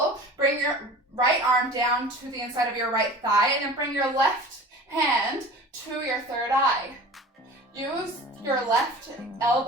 Bring your right arm down to the inside of your right thigh and then bring your left hand to your third eye. Use your left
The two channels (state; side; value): normal; both; correlation 0.39